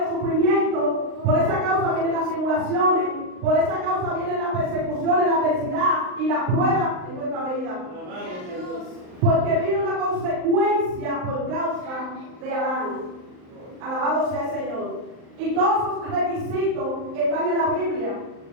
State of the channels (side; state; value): left; late; 38 ms